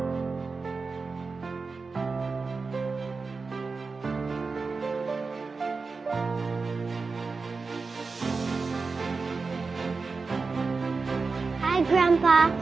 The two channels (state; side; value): quieter; left; 4.3 dB